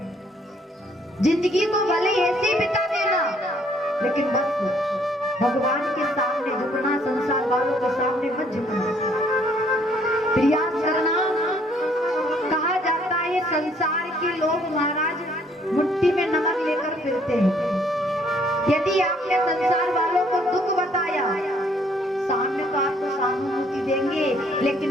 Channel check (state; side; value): normal; both; correlation 0.64